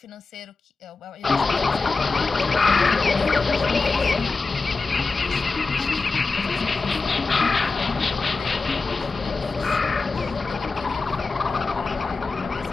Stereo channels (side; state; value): right; quieter; 4.0 dB